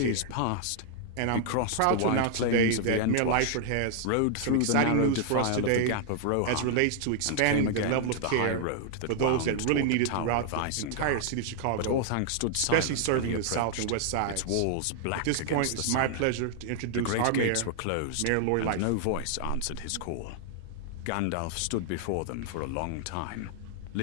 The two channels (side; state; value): both; different; correlation 0.00